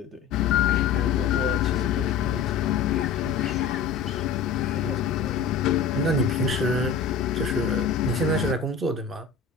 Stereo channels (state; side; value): quieter; right; 6.2 dB